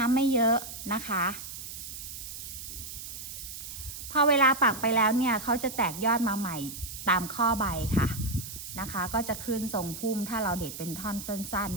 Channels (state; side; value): noise; right; hiss, 10 dB below the sound